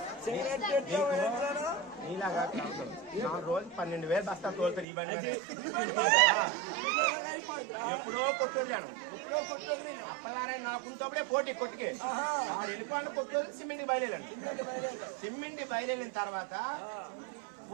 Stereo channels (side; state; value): left; drops out; at 4.9 s